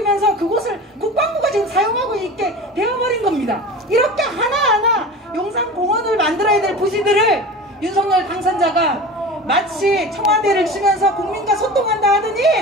그곳을 국방부가 지금 사용하고 있게 되어버린 겁니다. 이렇게 하나하나 용산공원을 만들어야 될 부지들을 윤석열 당선자가 마치 청와대를 주면서 국민과 소통한다 하더니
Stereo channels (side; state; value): both; normal; correlation 0.34